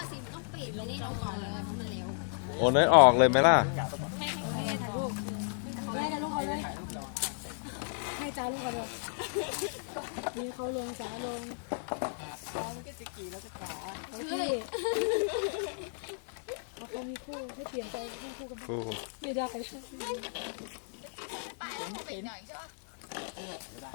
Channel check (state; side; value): silent; right; digital silence